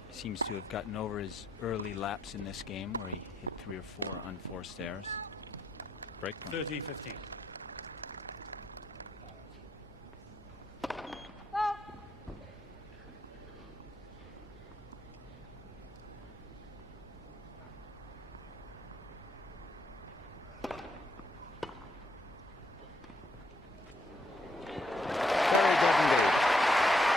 Seems to have gotten over his early lapse in this game where he hit 3 or 4 unforced errors. Break point. 30-15.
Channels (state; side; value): normal; both; correlation 0.75